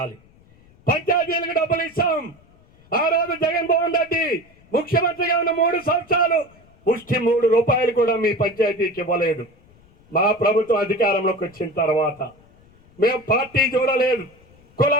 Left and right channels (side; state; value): left; noise; rumble, 29 dB below the sound